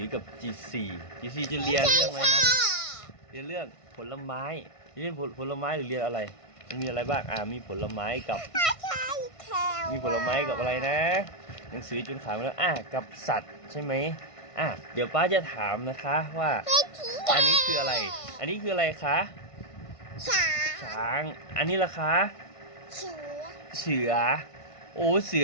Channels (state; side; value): late; right; 1.5 ms